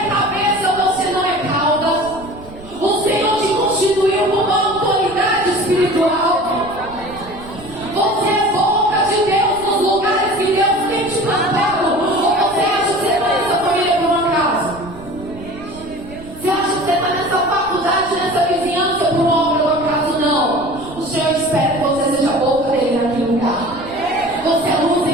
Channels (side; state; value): right; noise; rumble, 18 dB below the sound